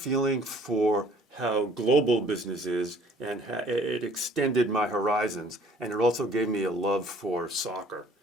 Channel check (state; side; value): normal; both; correlation 0.55